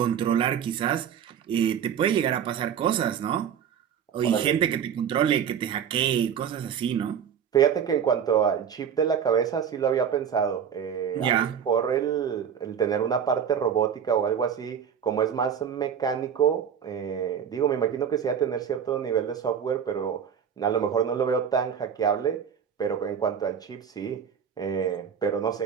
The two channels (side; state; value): left; quieter; 8.1 dB